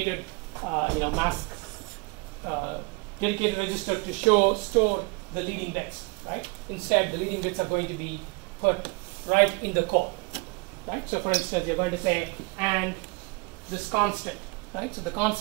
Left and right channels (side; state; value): left; quieter; 28.8 dB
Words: mask dedicated register to store the leading bits, right? Instead, the leading bits are going to be put right in the code, right? So for instance, you're going to say, and this constant, right? So the